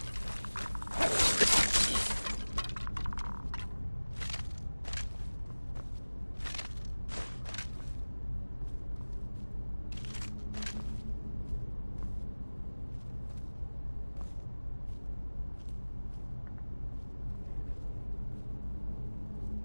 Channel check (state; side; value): inverted; both; correlation -1.00